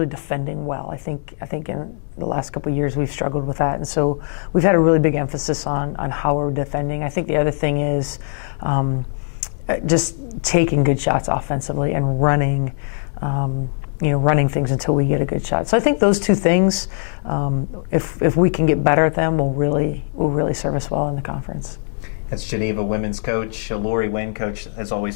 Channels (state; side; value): silent; right; digital silence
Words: defending well. I think in the last couple of years we've struggled with that, and so we've had a really big emphasis on how we're defending. I think the other thing is just taking good shots offensively and running things until we get a good shot. So I think those two things, if we can get better at them, will really serve us well in the conference. That's Geneva women's coach, Lori Wynn. Coach, as